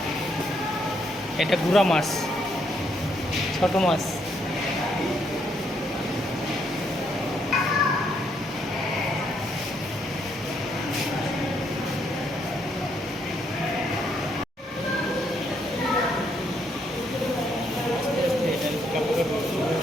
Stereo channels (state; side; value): normal; both; correlation 0.73